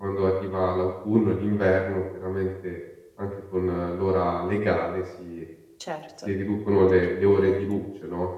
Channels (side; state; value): both; identical; correlation 1.00